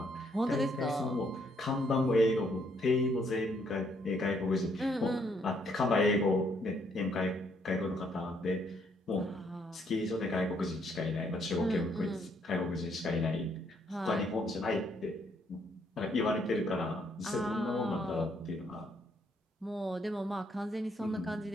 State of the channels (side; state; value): both; normal; correlation 0.70